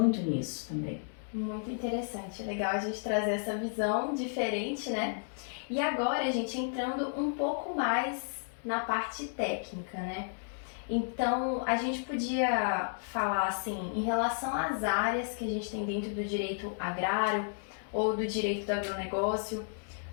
nisso também. Muito interessante, legal a gente trazer essa visão diferente, né? E agora, gente, entrando um pouco mais na parte técnica, né? Então, a gente podia falar assim, em relação às áreas que a gente tem dentro do direito agrário ou do direito do agronegócio,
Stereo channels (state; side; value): silent; right; digital silence